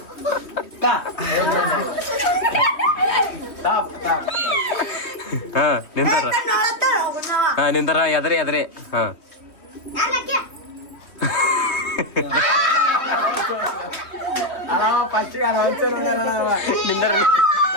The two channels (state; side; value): late; right; 3.2 ms